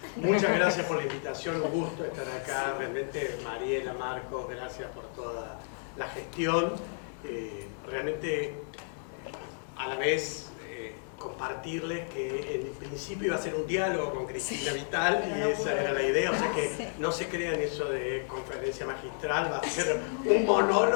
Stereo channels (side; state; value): right; silent; digital silence